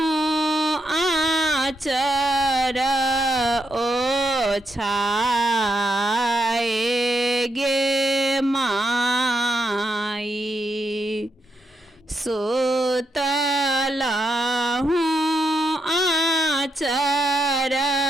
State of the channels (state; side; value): normal; both; correlation 0.82